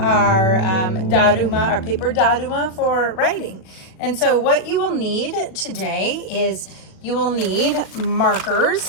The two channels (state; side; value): late; right; 37 ms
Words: Daruma, our paper Daruma for writing. And so what you will need today is you will need